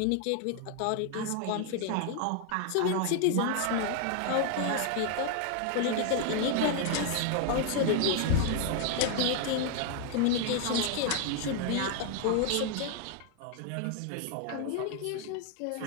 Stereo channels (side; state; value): both; different; correlation 0.00